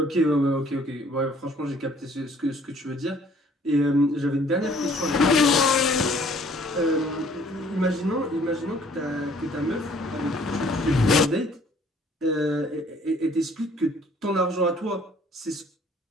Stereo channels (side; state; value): both; normal; correlation 0.58